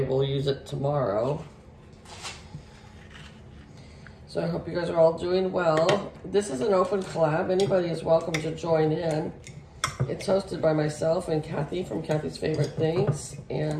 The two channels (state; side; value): identical; both; correlation 1.00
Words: use it tomorrow. So I hope you guys are all doing well. This is an open collab. Anybody is welcome to join in. It's hosted by myself and Kathy from Kathy's Favorite Things.